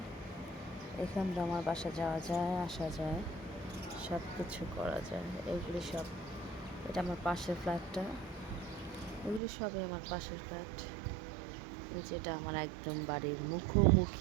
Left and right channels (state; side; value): drops out; left; at 9.4 s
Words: এখান দিয়ে আমার বাসা যাওয়া যায়, আসা যায়, সব কিছু করা যায়। এগুলি সব, এটা আমার পাশের ফ্ল্যাটটা, এগুলি সবই আমার পাশের ফ্ল্যাট। এই যেটা আমার একদম বাড়ির